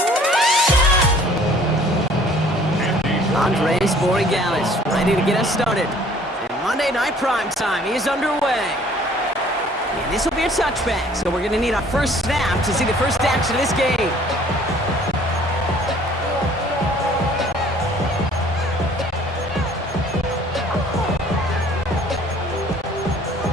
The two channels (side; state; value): both; normal; correlation 0.55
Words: Andres Borregalis ready to get us started. And Monday Night Prime Time is underway. And this will be a touchback, so we're going to need our first snap to see the first action of this game.